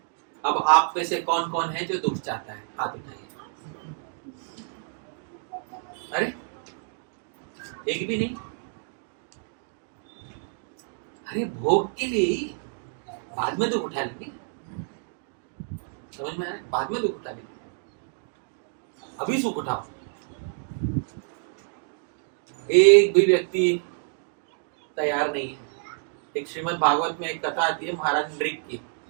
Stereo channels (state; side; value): silent; left; 59 dB below the other